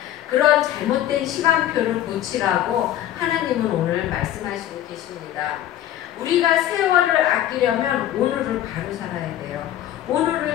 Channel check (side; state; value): right; quieter; 12.3 dB